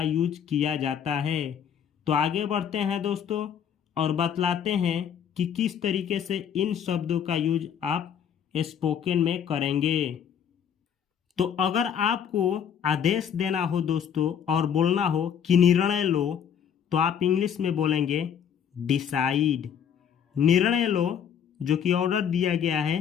यूज किया जाता है। तो आगे बढ़ते हैं दोस्तों और बतलाते हैं कि किस तरीके से इन शब्दों का यूज आप स्पोकन में करेंगे। तो अगर आपको आदेश देना हो दोस्तों और बोलना हो कि निर्णय लो तो आप इंग्लिश में बोलेंगे डिसाइड। निर्णय लो जो कि ऑर्डर दिया गया है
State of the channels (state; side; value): quieter; right; 8.3 dB